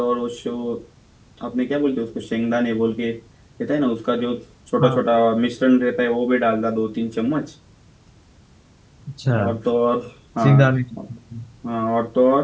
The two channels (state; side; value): identical; both; correlation 1.00